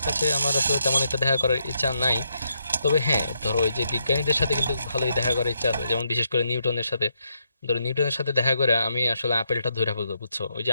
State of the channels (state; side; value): inverted; both; correlation -0.79